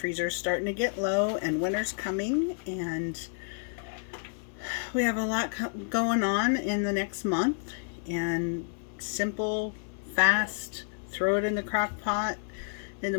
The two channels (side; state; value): right; silent; 58 dB below the other